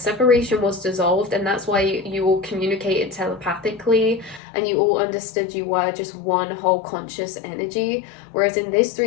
was dissolved, and that's why you all communicated telepathically, and you all understood you were just one whole conscious energy. Whereas in this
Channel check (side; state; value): right; drops out; at 4.4 s